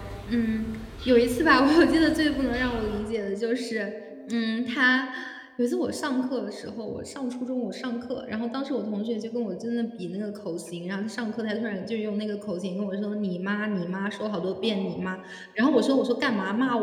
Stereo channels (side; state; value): both; identical; correlation 1.00